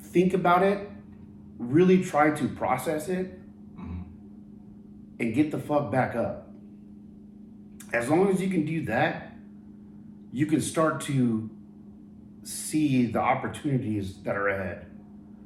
think about it, really try to process it, and get the fuck back up. As long as you can do that, you can start to see the opportunities that are ahead.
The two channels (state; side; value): identical; both; correlation 1.00